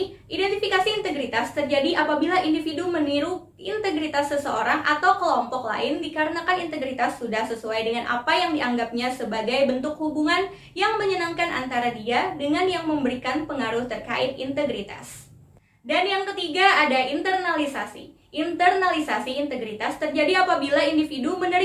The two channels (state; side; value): identical; both; correlation 1.00